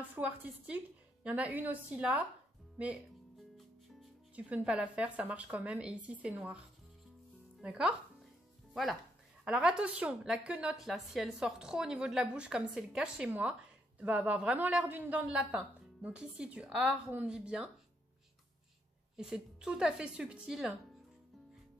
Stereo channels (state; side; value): normal; both; correlation 0.76